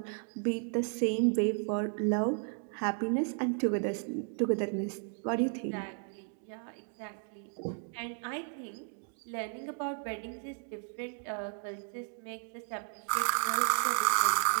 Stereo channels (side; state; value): left; quieter; 39.4 dB